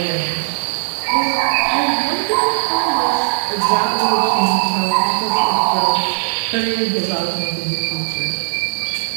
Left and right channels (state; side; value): silent; left; 67 dB below the other